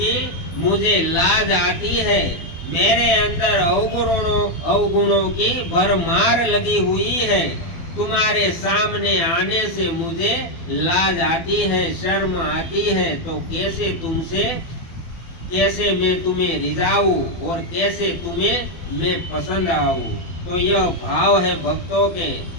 मुझे लाज आती है। मेरे अंदर अवगुणों की भरमार लगी हुई है। तुम्हारे सामने आने से मुझे लाज आती है, शर्म आती है। तो कैसे मैं तुम्हें रिझाऊं और कैसे तुम्हें मैं पसंद आऊं। तो यह भाव है भक्तों के।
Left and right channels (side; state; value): right; late; 12 ms